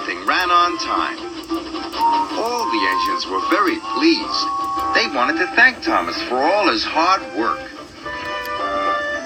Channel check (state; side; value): identical; both; correlation 1.00